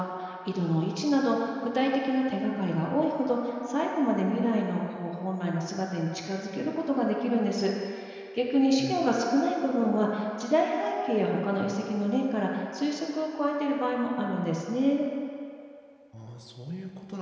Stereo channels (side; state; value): both; identical; correlation 1.00